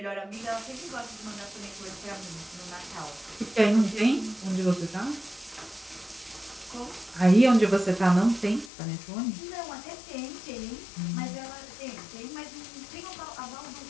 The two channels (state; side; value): drops out; right; at 8.7 s